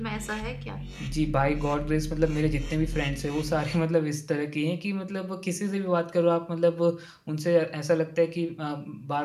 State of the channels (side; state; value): both; identical; correlation 1.00